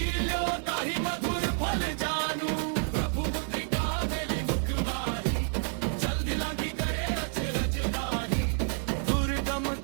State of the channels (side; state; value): left; silent; 58 dB below the other